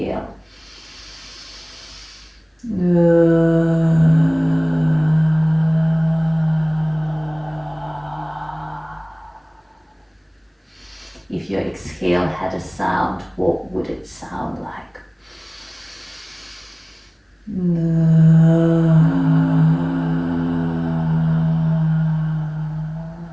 If your exhale had a sound, what would it sound like?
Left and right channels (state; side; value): identical; both; correlation 1.00